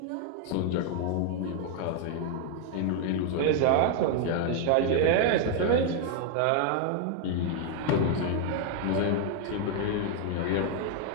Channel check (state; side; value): different; both; correlation 0.00